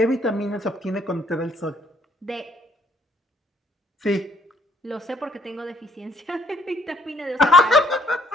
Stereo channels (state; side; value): normal; both; correlation 0.65